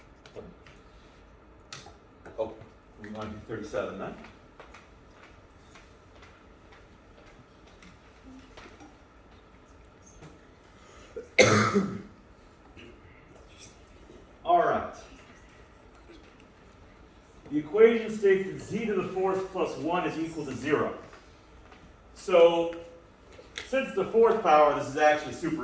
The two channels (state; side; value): identical; both; correlation 1.00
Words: Oh, we want to do 37 then. All right. The equation states that z to the fourth plus 1 is equal to 0. So, since the fourth power, this is actually